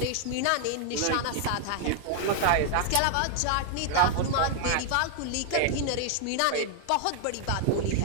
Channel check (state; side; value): different; both; correlation 0.00